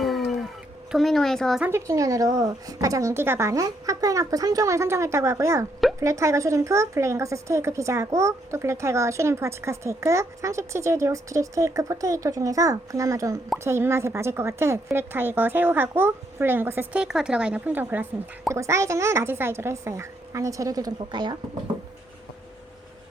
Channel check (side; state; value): both; normal; correlation 0.74